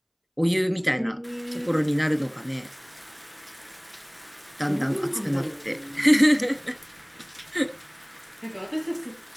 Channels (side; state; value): both; identical; correlation 1.00